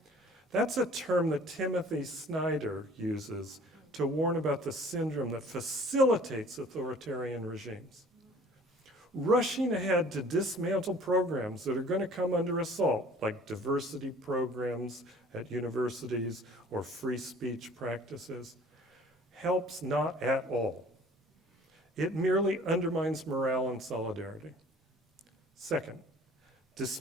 That's a term that Timothy Snyder uses to warn about the syndrome that facilitates authoritarian regimes. Rushing ahead to dismantle programs that are going to come under assault, like diversity programs at universities or free speech practices, helps not at all. It merely undermines morale and solidarity. Second,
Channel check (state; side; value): normal; both; correlation 0.51